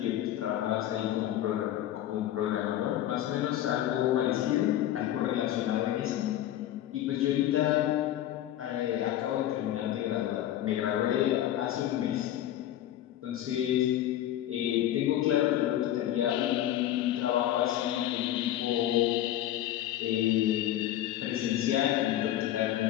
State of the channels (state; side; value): quieter; right; 12.7 dB